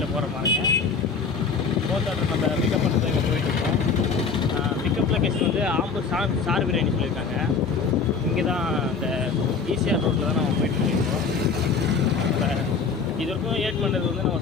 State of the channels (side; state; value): right; quieter; 5.2 dB